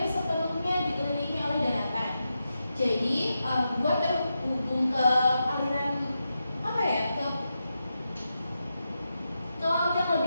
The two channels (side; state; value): both; inverted; correlation -0.88